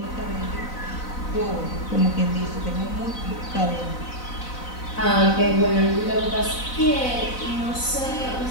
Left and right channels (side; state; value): right; late; 4.0 ms